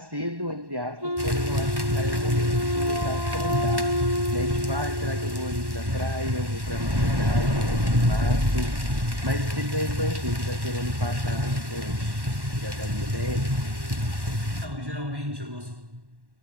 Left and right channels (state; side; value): late; left; 1.1 ms